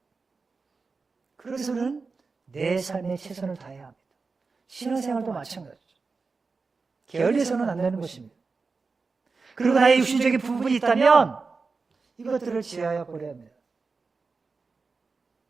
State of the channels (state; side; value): quieter; left; 4.4 dB